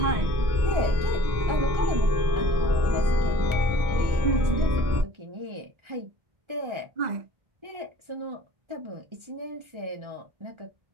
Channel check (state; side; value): late; left; 1.3 ms